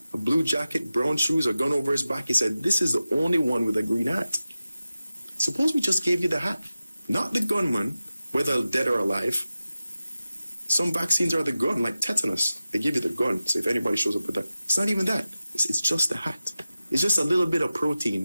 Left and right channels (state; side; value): inverted; both; correlation -0.94